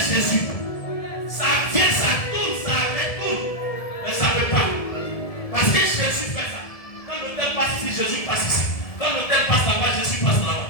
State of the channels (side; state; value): right; late; 1.7 ms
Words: Jésus, ça vient, ça tourne, ça retourne. Mais ça ne veut pas. Parce que Jésus fait ça. Quand l'autel passe ici, Jésus passe ici. Quand l'autel passe là-bas, Jésus passe là-bas.